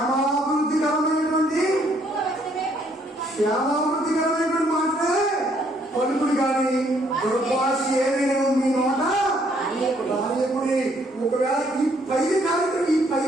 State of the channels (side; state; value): both; normal; correlation 0.67